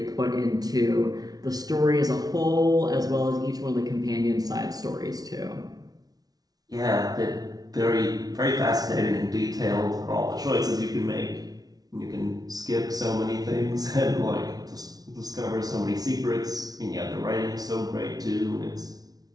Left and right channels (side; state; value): left; late; 0.19 ms